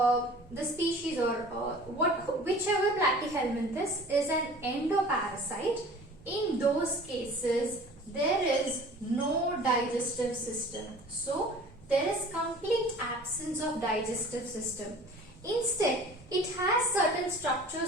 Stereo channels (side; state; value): both; normal; correlation 0.45